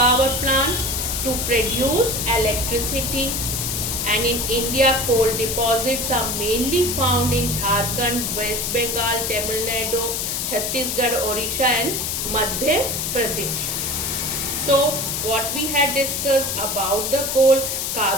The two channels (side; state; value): left; noise; hiss, 1 dB below the sound